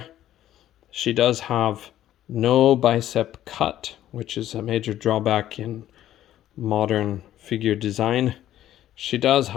She does have no bicep cut, which is a major drawback in modern figure design. She does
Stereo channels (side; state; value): right; quieter; 12.5 dB